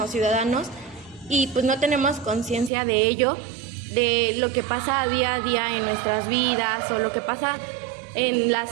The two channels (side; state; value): left; drops out; at 2.7 s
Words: ciudadanos, y pues no tenemos conciencia de ello, de lo que pasa día a día en nuestras vidas o lo que pasa en